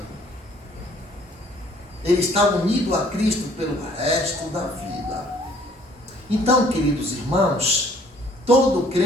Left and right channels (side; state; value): both; normal; correlation 0.58